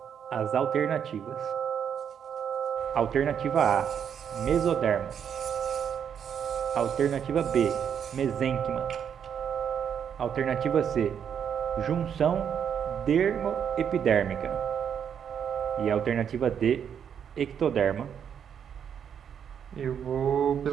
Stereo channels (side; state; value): left; quieter; 8.1 dB